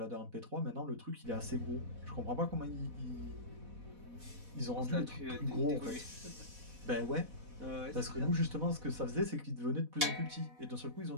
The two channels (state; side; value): late; left; 4.1 ms